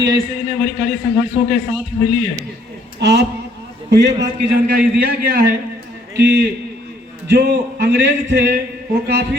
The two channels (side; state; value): both; normal; correlation 0.65